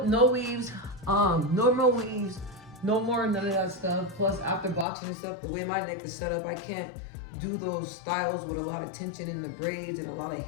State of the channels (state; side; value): drops out; right; at 4.9 s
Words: no weaves, no more weaves, no more none of that stuff. Plus, after boxing and stuff, the way my neck is set up, I can't do those styles with a lot of tension in the braids and a lot of